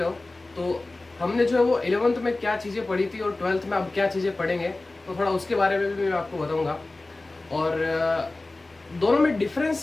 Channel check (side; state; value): right; quieter; 3.1 dB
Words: हो। तो हमने जो है वो 11th में क्या चीज़ें पढ़ी थी और 12th में अब क्या चीज़ें पढ़ेंगे, तो थोड़ा उसके बारे में भी मैं आपको बताऊँगा। और दोनों में